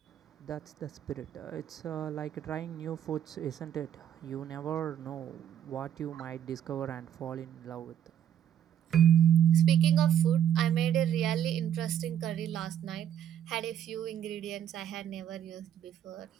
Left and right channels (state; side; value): quieter; left; 9.9 dB